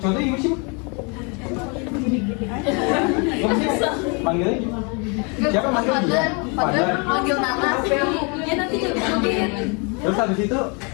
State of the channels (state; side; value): quieter; right; 33.1 dB